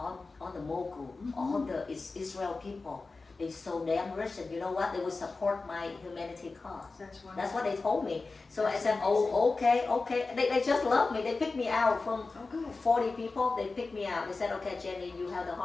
the mogul, all the Israel people, they so damn rich, and you know what? They will support my humanity cause. That's wonderful. That's what they told me. So I said, oh, okay. They just love me. They picked me out from Oh, good. 40 people. They picked me out. They said, okay, Jenny, you have the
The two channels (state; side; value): quieter; right; 3.8 dB